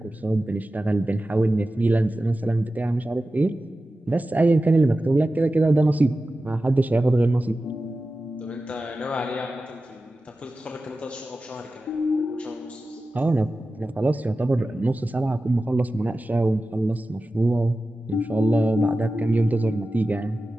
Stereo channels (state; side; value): normal; both; correlation 0.94